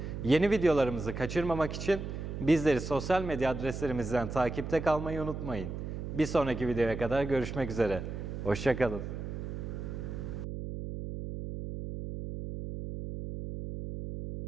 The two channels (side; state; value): right; noise; hum, 6 dB below the sound